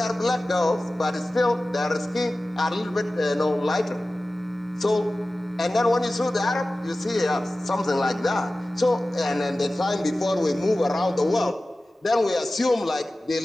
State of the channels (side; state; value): both; normal; correlation 0.96